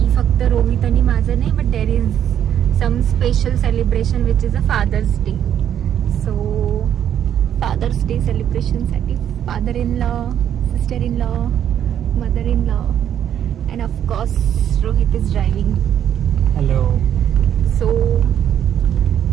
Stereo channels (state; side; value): quieter; left; 9.8 dB